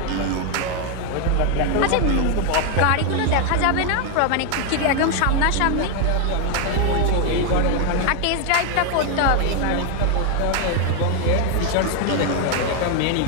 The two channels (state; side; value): different; both; correlation 0.01